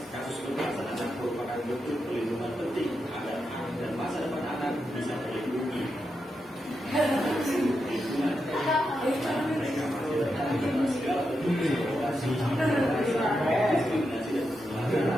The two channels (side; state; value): both; normal; correlation 0.86